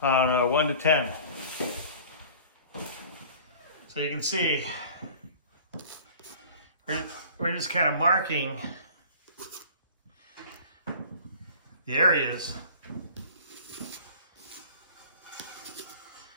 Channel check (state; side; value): inverted; both; correlation -0.44